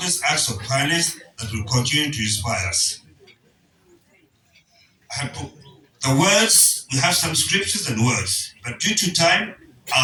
acts of kindness that will continue to inspire us. The words, we have some scriptures and words, but due to time,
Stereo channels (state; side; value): identical; both; correlation 1.00